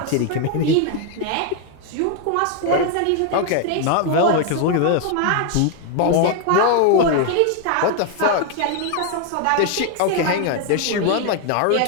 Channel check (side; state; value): both; different; correlation 0.00